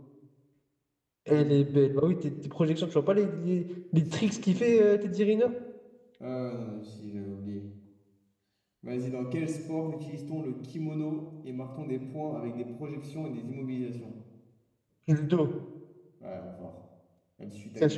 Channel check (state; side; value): identical; both; correlation 1.00